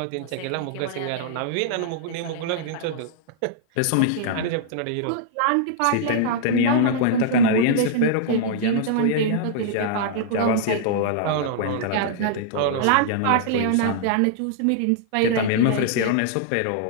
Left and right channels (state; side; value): different; both; correlation -0.01